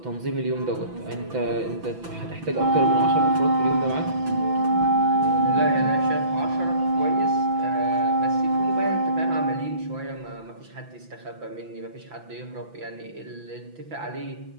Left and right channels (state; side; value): late; left; 6.0 ms